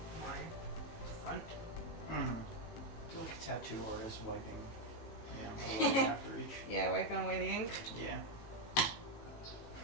my front. Feel like a tattoo artist wiping, away after each. Yeah, wiping away the ink. Yeah. I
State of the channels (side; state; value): right; late; 18 ms